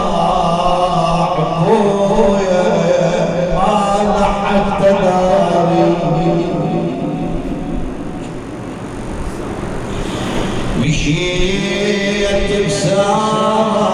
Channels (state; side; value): identical; both; correlation 1.00